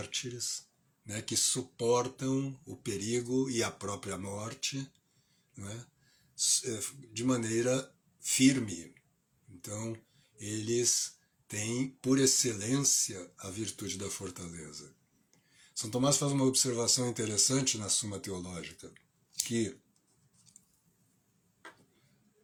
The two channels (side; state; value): both; identical; correlation 1.00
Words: né, que suportam o perigo e a própria morte, né, de maneira firme. Então, eles têm, por excelência, a virtude da fortaleza. São Tomás faz uma observação interessante na Suma Teológica, que